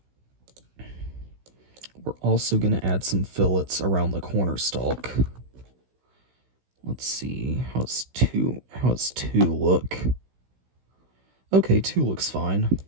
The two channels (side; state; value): left; late; 16 ms